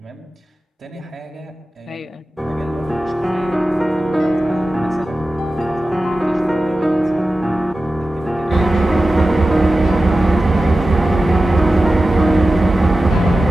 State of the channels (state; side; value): normal; both; correlation 0.94